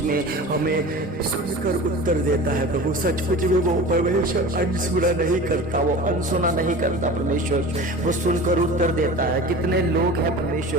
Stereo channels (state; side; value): normal; both; correlation 0.36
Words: में हमें सुनकर उत्तर देता है प्रभु। सचमुच में वो परमेश्वर अनसुना नहीं करता, वो अनसुना नहीं करता परमेश्वर, वो सुनकर उत्तर देता है। कितने लोग हैं